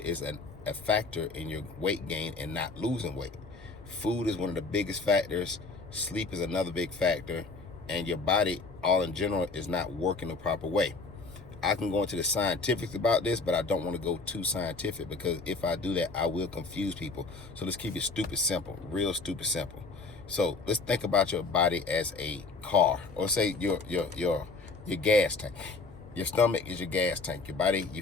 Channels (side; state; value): right; quieter; 3.9 dB